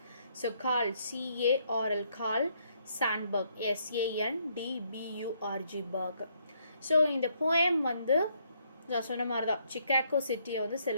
So Carl CARL Carl Sandburg SANDBURG Burg. So இந்த போயம் வந்து நான் சொன்ன மாதிரி தான் சிக்காகோ சிட்டியை வந்து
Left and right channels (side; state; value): both; inverted; correlation -0.71